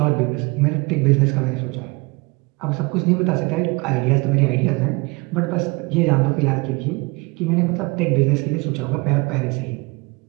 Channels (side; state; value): left; quieter; 26.4 dB